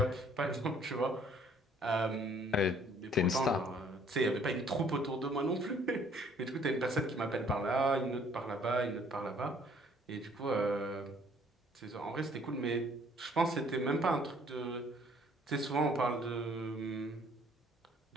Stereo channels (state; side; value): normal; both; correlation 0.59